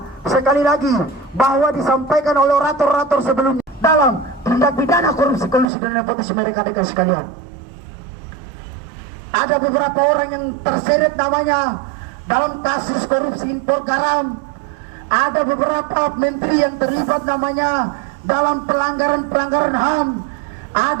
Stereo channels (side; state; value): left; drops out; at 5.7 s